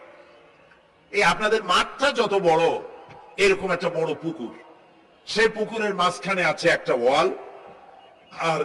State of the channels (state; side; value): identical; both; correlation 1.00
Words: এই আপনাদের মাঠটা যত বড়, এরকম একটা বড় পুকুর। সেই পুকুরের মাঝখানে আছে একটা ওয়াল, আর